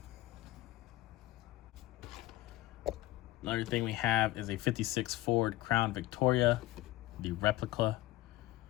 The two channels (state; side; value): quieter; right; 16.9 dB